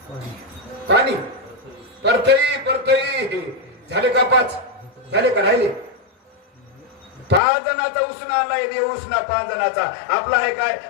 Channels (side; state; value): right; drops out; at 7.4 s